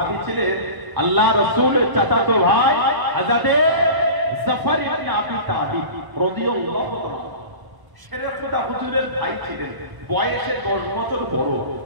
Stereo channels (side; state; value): left; late; 1.0 ms